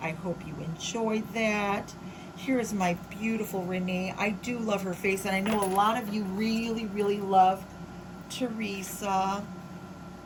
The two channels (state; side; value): identical; both; correlation 1.00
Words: I hope you enjoyed that. Here's my beautiful Renee. I do love her face, and I know a lot of you really, really love Teresa,